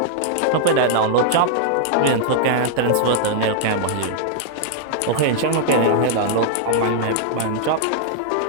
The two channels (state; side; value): different; both; correlation -0.01